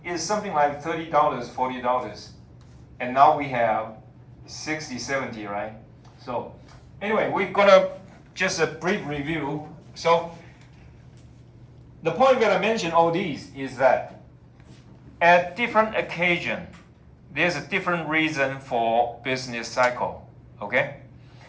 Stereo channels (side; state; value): both; identical; correlation 1.00